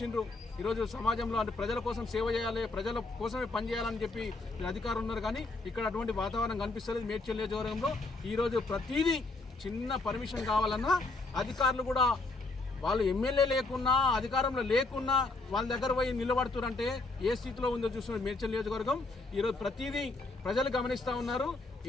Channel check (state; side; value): quieter; right; 3.3 dB